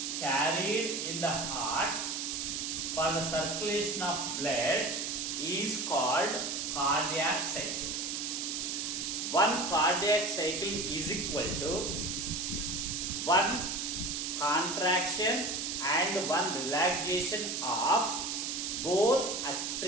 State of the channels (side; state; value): right; noise; hiss, 2 dB below the sound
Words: carried in the heart for the circulation of blood is called cardiac cycle. One cardiac cycle is equal to one contraction and one relaxation of both